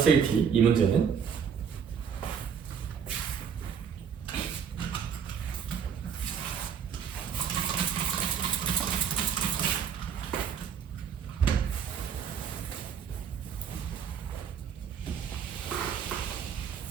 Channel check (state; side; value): quieter; left; 7.3 dB